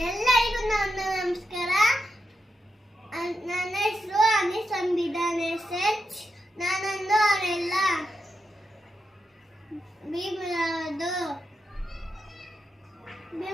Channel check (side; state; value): both; normal; correlation 0.86